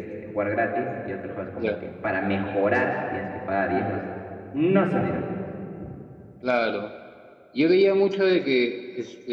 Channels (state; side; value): identical; both; correlation 1.00